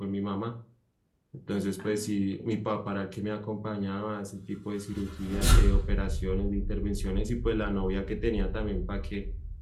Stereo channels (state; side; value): identical; both; correlation 1.00